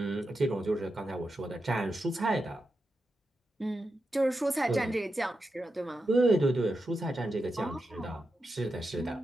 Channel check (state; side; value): normal; both; correlation 0.88